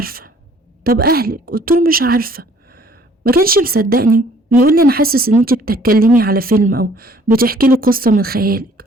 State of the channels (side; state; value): both; normal; correlation 0.58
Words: طب اهلك؟ قلت له: مش عارفة. ما كانش مصدقني، بيقول لي: انا حاسس ان انت بتتكلمي على فيلم او بتحكي لي قصة من خيالك.